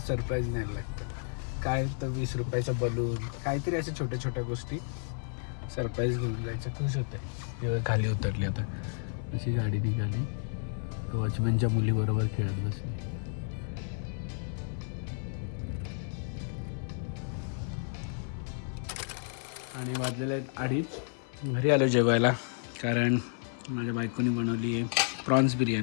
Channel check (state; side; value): silent; right; 57 dB below the other